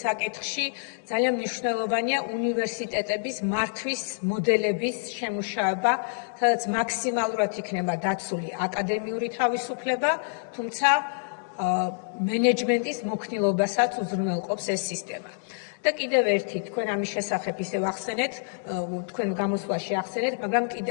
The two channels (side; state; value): right; silent; digital silence